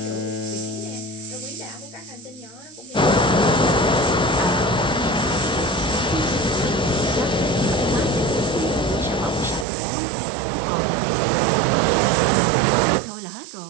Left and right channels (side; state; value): left; drops out; at 9.7 s